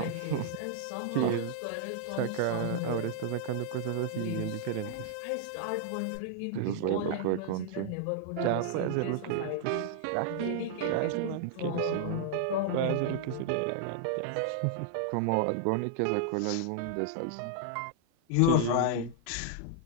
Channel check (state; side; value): different; both; correlation -0.01